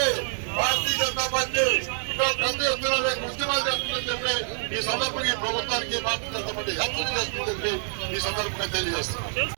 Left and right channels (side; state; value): left; silent; digital silence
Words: భారతీయ జనతా పార్టీ పెద్ద ఎత్తున ఉద్యమాలు చేస్తుందని చెప్పి ఈ సందర్భంగా ఈ ప్రభుత్వానికి భారతీయ జనతా పార్టీ హెచ్చరిక చేస్తుందని చెప్పి ఈ సందర్భంగా తెలియజేస్తున్నాం.